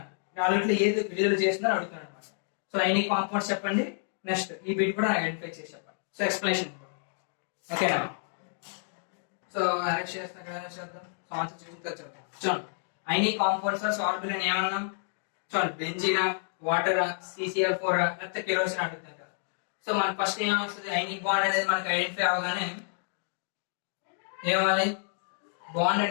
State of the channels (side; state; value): right; silent; digital silence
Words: నాలుగిట్లో ఏది విడుదల చేస్తుందని అడుగుతున్నాను అనమాట. సో ఐనిక్ కాంపౌండ్స్ చెప్పండి. నెక్స్ట్ ఈ బిట్ కూడా ఐడెంటిఫై చేసి చెప్పండి. సో ఎక్స్ప్లెనేషన్ ఓకేనా. సో అరెస్ట్ చేద్దాం. ఆన్సర్ చూసిన తర్వాత చూడండి ఐనిక్ కాంపౌండ్స్ ఆర్ సాల్యుబుల్ అని ఏమన్నాం. చూడండి బెంజీనా, వాటర్, CCl4 లేకపోతే కెరోసిన్ అడుగుతారు కదా. సో మనకి ఫస్ట్ ఏం వస్తుంది, ఐనిక్ బాండ్ అనేది మనకి ఐడెంటిఫై అవగానే ఏమవ్వాలి, బాండ్